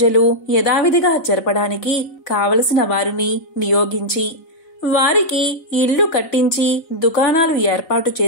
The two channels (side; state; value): right; late; 4.0 ms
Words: యథావిధిగా జరపడానికి కావలసిన వారిని నియోగించి వారికి ఇల్లు కట్టించి దుకాణాలు ఏర్పాటు